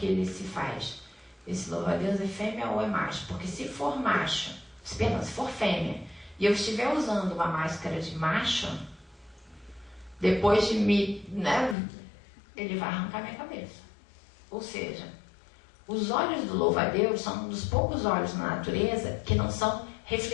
ele se faz: esse louva-a-Deus é fêmea ou é macho? Porque se for macho, se for fêmea, e eu estiver usando uma máscara de macho, depois de me, ele vai arrancar minha cabeça. Ou seja, os olhos do louva-a-Deus são um dos poucos olhos na natureza que não são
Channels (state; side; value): drops out; right; at 11.8 s